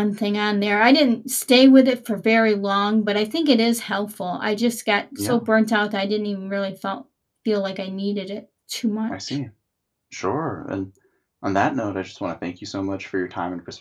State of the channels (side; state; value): both; identical; correlation 1.00